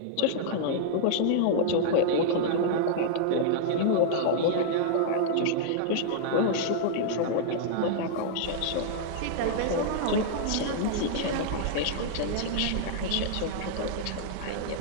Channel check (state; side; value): different; both; correlation -0.01